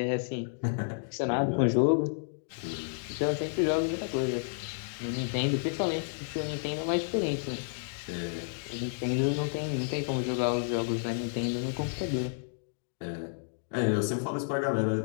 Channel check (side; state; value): right; silent; digital silence